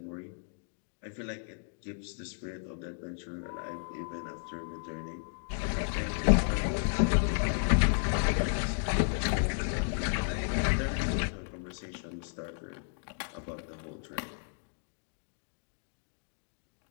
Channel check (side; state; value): right; silent; digital silence